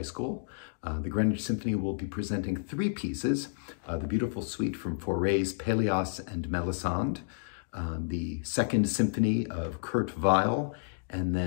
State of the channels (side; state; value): right; silent; digital silence